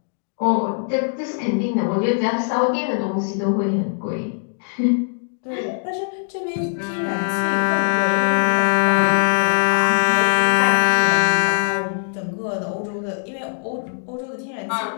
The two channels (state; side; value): silent; right; digital silence